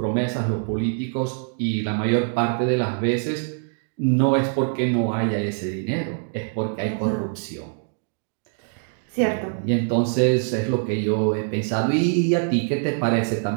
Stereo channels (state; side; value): silent; left; 63 dB below the other